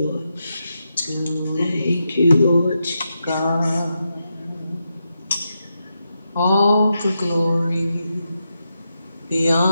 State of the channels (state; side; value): inverted; both; correlation -0.86